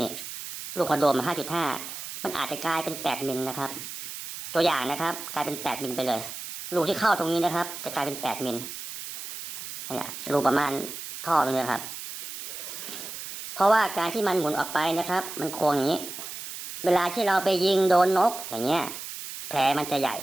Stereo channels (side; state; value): right; noise; hiss, 9 dB below the sound